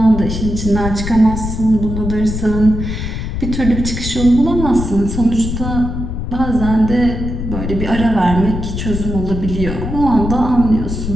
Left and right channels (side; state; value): left; noise; rumble, 5 dB below the sound